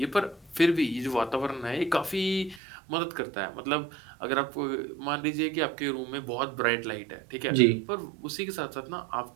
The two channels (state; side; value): drops out; left; at 2.6 s